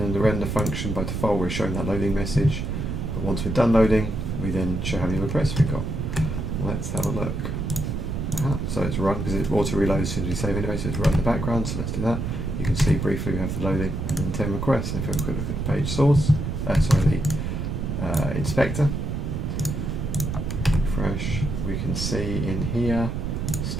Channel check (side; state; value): right; noise; rumble, 3 dB below the sound